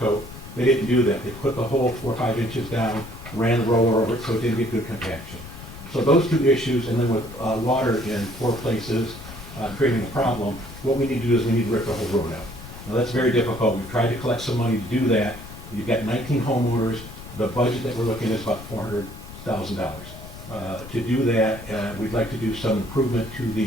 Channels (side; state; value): left; noise; rumble, 14 dB below the sound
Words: They didn't do that. They put the whole 4 or 5 inches down, ran the roller over it so it didn't get good compaction. So those 2 issues, and then with water in 4 places creating a problem, what we need to do is we need to rip the whole road out. Now that's very difficult. We've tried to collect some money to do that. You've got 19 homeowners. The budget that we're looking at is about $400,000. To do that, we'd like to do some improvement to